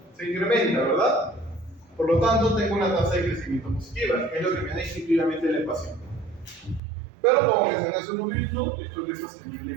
Se incrementa, ¿verdad? Por lo tanto, tengo una tasa de crecimiento positiva, que es lo que me da instintivamente la ecuación. Pero como mencioné hace un momento, esto no es sostenible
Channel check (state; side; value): drops out; left; at 6.8 s